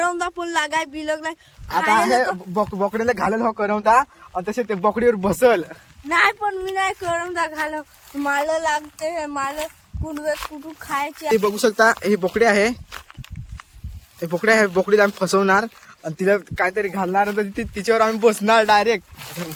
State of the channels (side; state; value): both; identical; correlation 1.00